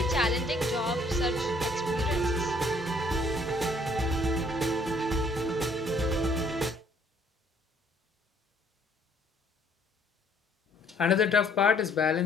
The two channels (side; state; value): both; normal; correlation 0.62